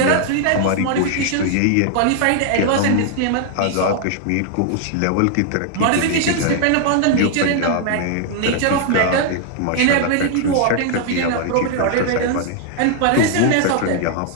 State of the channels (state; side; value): different; both; correlation 0.00